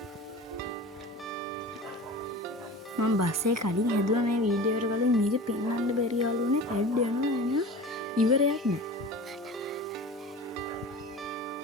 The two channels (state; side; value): normal; both; correlation 0.36